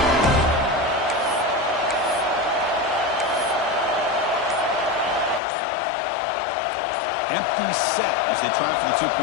Empty set as they try for the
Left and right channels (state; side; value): drops out; right; at 5.4 s